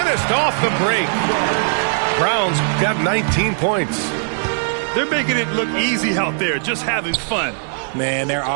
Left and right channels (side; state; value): left; silent; digital silence